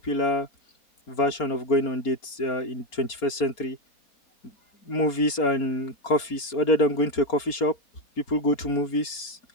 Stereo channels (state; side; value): late; right; 4.3 ms